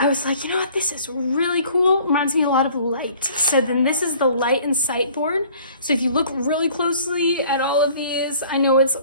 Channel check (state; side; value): inverted; both; correlation -0.53